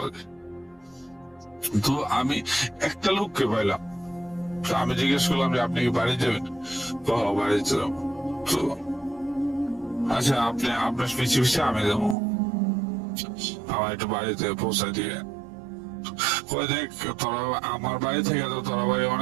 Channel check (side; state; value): left; drops out; at 12.2 s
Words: তো আমি একটা লোককে পাইলাম, তো আমি জিজ্ঞেস করলাম যে আপনি কি বাড়ি যাবেন? বাড়িতে যাবো। তো আচ্ছা, আপনি আপনার পিছু আমি যাবো, আমার একটু বাড়িতে পৌঁছায় দিয়ে। দেখ, তোরা আমার বাড়ি থেকে তো তোরা বাড়ি